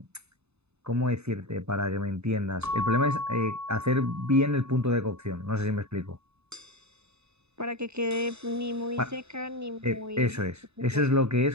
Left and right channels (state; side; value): late; left; 0.80 ms